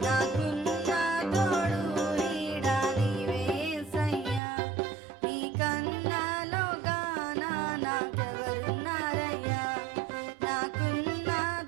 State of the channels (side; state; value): left; drops out; at 4.4 s